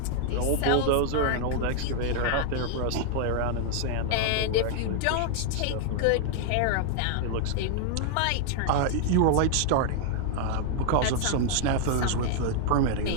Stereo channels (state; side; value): different; both; correlation 0.00